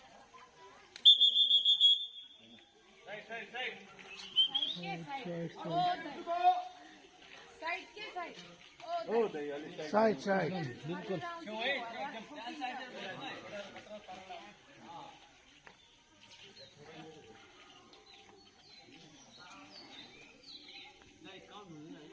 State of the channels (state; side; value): identical; both; correlation 1.00